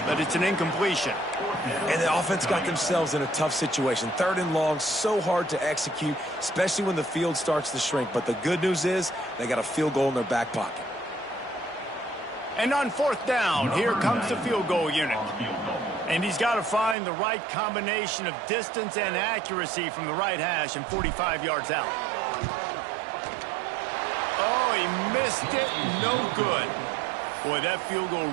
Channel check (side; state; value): left; drops out; at 16.9 s